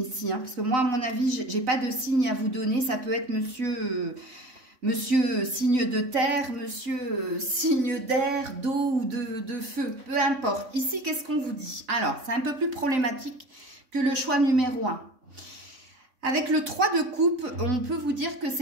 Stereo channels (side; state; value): left; late; 3.6 ms